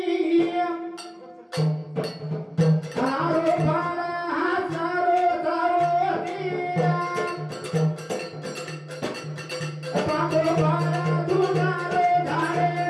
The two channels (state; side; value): identical; both; correlation 1.00